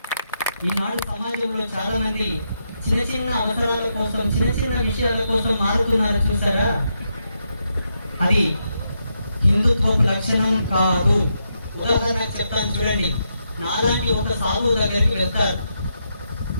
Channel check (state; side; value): inverted; both; correlation -0.82